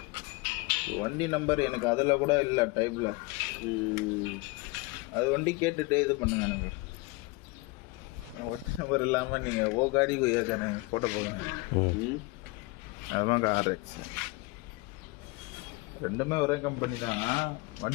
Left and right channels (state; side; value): quieter; right; 24.8 dB